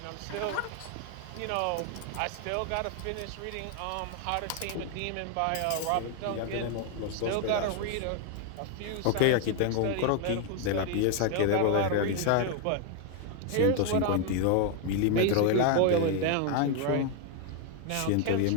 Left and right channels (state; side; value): different; both; correlation 0.00